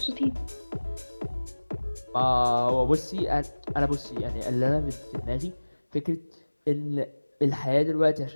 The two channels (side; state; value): both; inverted; correlation -1.00